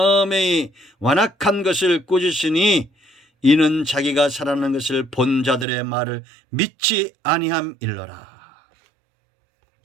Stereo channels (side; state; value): left; drops out; at 5.7 s